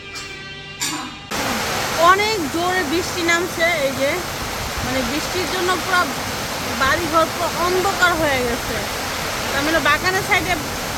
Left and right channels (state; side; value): identical; both; correlation 1.00